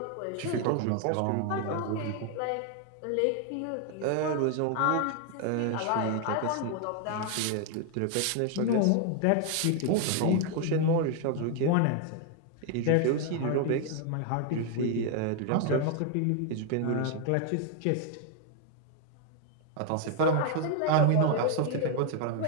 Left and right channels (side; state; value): both; different; correlation 0.00